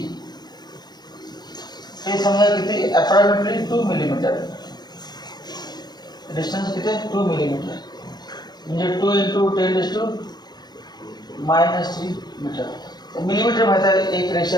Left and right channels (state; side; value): late; right; 0.20 ms